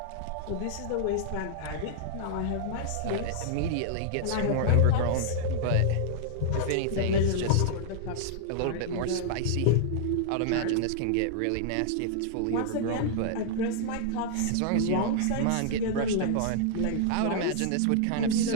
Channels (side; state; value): both; different; correlation -0.01